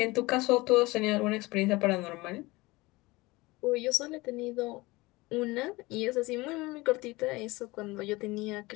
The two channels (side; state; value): right; quieter; 21.8 dB